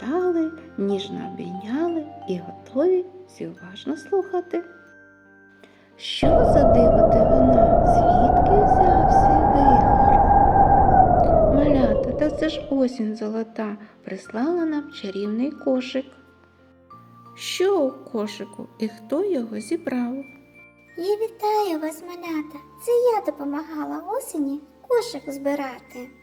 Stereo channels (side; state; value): both; identical; correlation 1.00